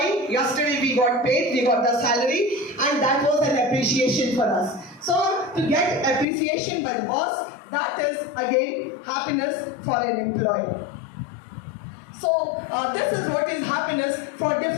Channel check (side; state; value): right; drops out; at 6.2 s